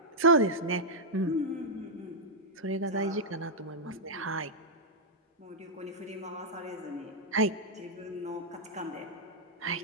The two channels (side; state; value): both; normal; correlation -0.05